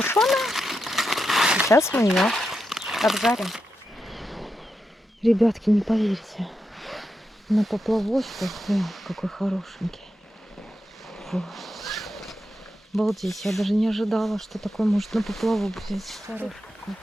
Сейчас мы ее обжарим. Ребятки, не поверите, на поплавочку, какой хорошенький. Фу. Обалдеть, я даже не ожидала, что такой может на поплавок взять. Хороший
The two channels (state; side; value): normal; both; correlation 0.87